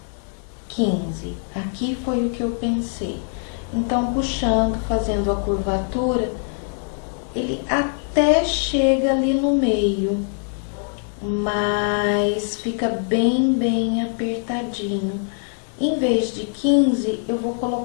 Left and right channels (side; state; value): right; silent; 55 dB below the other